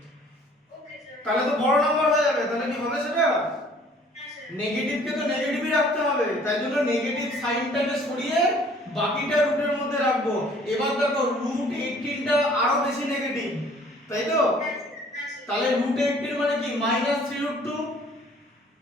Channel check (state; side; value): normal; both; correlation 0.55